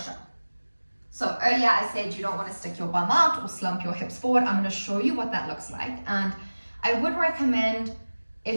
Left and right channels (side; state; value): both; inverted; correlation -1.00